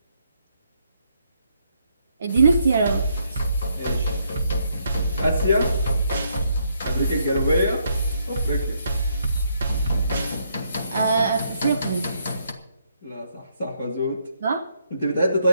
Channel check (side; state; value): both; inverted; correlation -0.74